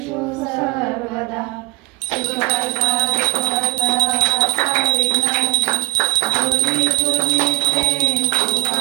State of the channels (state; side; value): quieter; left; 22.4 dB